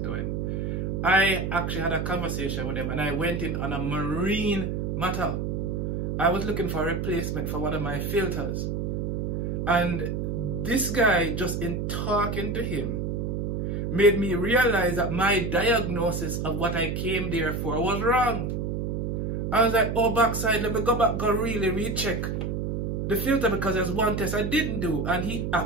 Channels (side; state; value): right; noise; hum, 1 dB below the sound